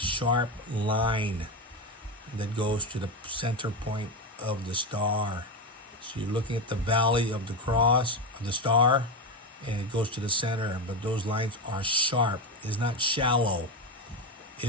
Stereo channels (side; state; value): both; normal; correlation 0.15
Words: line that goes to the center point of the star. So you're looking at the valley of the cross, of the star, and it goes to the center, but those lines are sharp. It's not shallow.